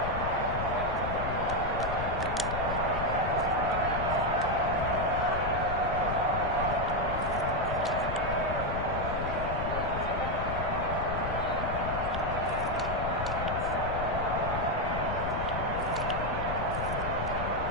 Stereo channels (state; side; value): noise; left; rumble, 4 dB below the sound